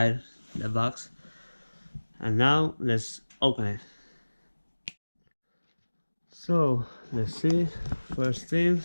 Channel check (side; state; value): both; inverted; correlation -1.00